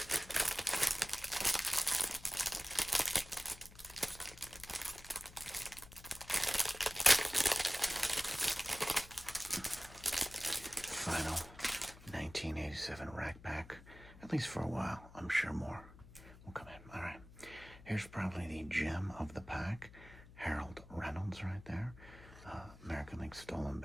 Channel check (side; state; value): left; noise; hum, 19 dB below the sound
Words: Final 1987 rack pack. At least for a while. I'm sure more will come in. All right. Here's probably the gem of the pack. Harold Reynolds right there. American League stolen